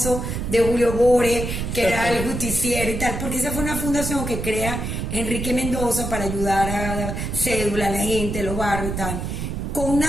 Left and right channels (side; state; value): right; noise; rumble, 4 dB below the sound